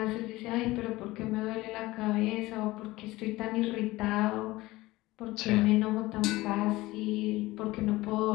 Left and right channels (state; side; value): quieter; right; 19.1 dB